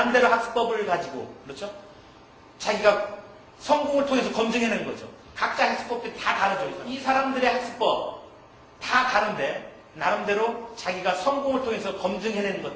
학습법을 가지고 그렇죠? 자기가 성공을 통해서 검증해낸 거죠. 각자 학습법들이 다 다르죠. 이 사람들의 학습법 다 다른데 나름대로 자기가 성공을 통해서 검증해내는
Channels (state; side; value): identical; both; correlation 1.00